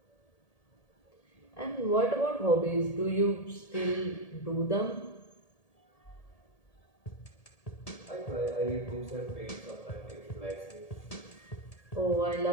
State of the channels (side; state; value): right; late; 1.8 ms